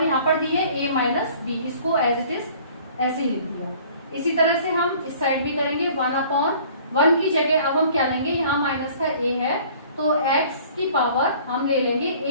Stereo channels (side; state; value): both; inverted; correlation -0.52